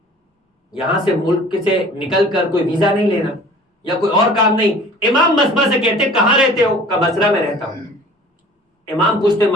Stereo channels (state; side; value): normal; both; correlation 0.47